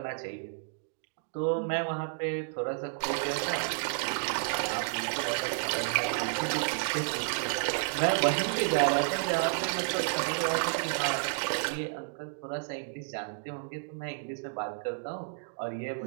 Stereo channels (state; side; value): silent; left; digital silence